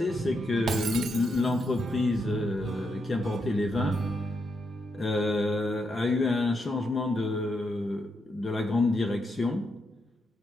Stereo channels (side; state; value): both; normal; correlation 0.81